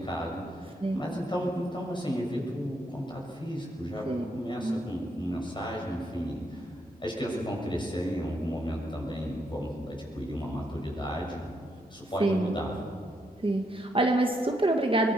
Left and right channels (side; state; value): left; noise; rumble, 30 dB below the sound